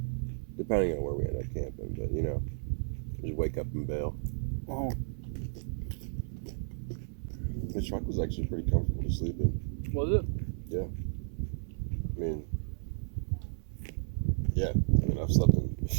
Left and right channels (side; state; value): left; silent; 56 dB below the other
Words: depending on where we end up camping. But you know, just wake up and bail. Oh, The truck was actually pretty comfortable to sleep in. was it? Yeah. I mean, I've slept in a